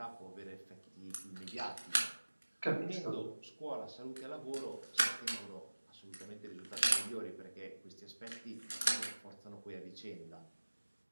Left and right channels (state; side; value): inverted; both; correlation -1.00